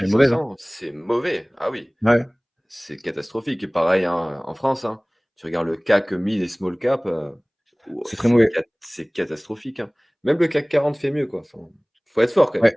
est mauvaise, hein? 500, c'est mauvais. Ah oui. Ouais, C'est catastrophique. Et pareil, hein, en France, hein. Tu regardes le CAC 1000 et small cap, ouah, c'est très mauvais. c'est catastrophique, hein. Même le CAC 40 fait mieux, quoi. Enfin, faut être fort quand même.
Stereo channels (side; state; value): both; identical; correlation 1.00